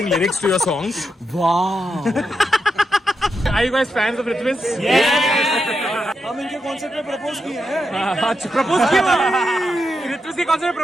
lyrics to your songs? Wow. Are you guys fans of Ritviz? हम इनके concert में propose किए हैं. Propose किया ऋत्विज के concert में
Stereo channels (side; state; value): both; normal; correlation 0.85